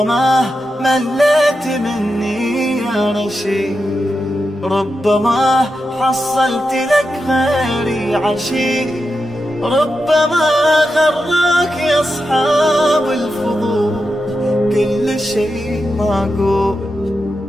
مليت مني يا رشيد، ربما حصلت لك غيري عشيق، ربما غراك يا أصحاب الفضول كل شيء معقول.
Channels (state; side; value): normal; both; correlation 0.89